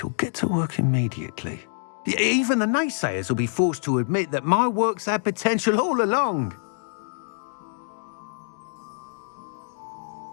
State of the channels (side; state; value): right; silent; digital silence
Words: get to work immediately. Even the naysayers will be forced to admit that my work's had potential all along.